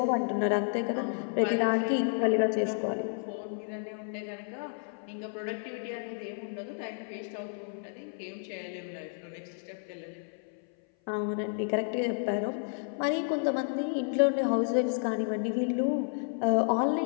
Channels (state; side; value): silent; right; 56 dB below the other